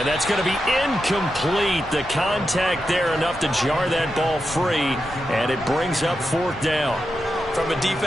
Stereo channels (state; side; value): normal; both; correlation 0.88